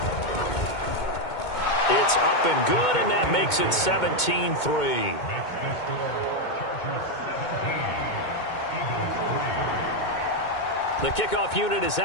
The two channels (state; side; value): late; right; 2.2 ms